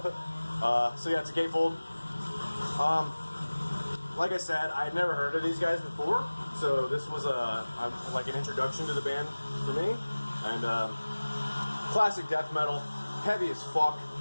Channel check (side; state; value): both; inverted; correlation -1.00